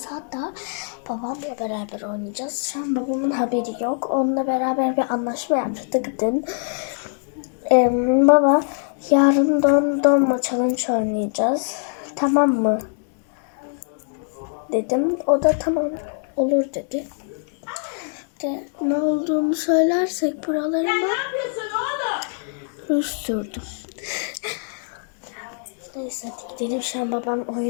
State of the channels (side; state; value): right; silent; 63 dB below the other